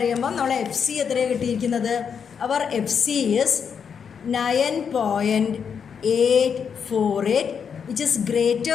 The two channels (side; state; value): right; quieter; 6.9 dB